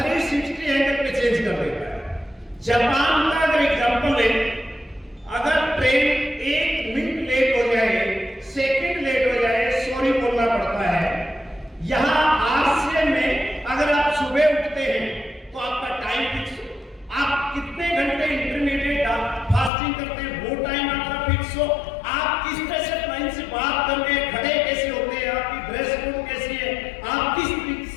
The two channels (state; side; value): drops out; right; at 19.7 s